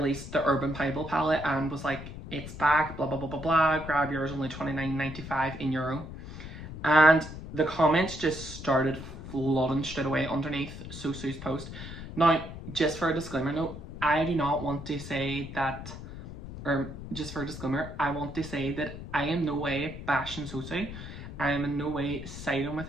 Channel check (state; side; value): noise; left; rumble, 11 dB below the sound